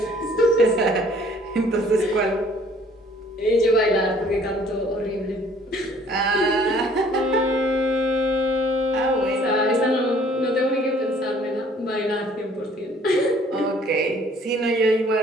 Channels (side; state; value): both; normal; correlation 0.57